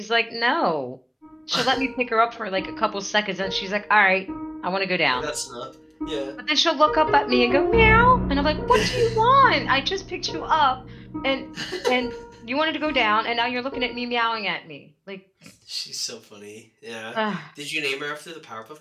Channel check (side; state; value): both; identical; correlation 1.00